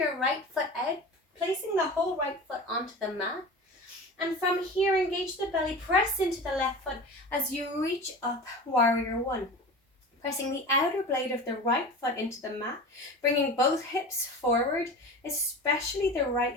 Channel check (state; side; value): normal; both; correlation 0.33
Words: right foot out, placing the whole right foot onto the mat. And from here, engage the belly, press into the left foot as you reach up, warrior one. Pressing the outer blade of the right foot into the mat, bringing both hips forward, especially the right